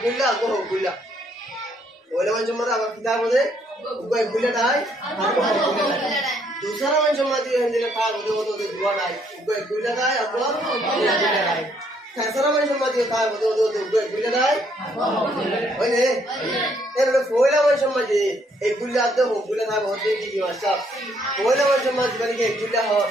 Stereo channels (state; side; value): normal; both; correlation 0.69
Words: গুল্লা গো গুল্লা ওইলা মানুষ মধ্যে আবার কিতাব মধ্যে উপয় গুল্লা দাই আর গুল্লা দাই दूसरा মানুষ মধ্যে হিন্দিতে কাজ হতে দুয়া দাই উপয় গুল্লা দাই আর গুল্লা দাই तीसरा মানুষ মধ্যে কাজ হতে উপয় গুল্লা দাই ওইনে এর ওইলা মানুষ মধ্যে এই গুল্লা আতে হো গুল্লা দাই হতে কি মাস্টার ওইলা মানুষ মধ্যে বলি কি গুল্লা হ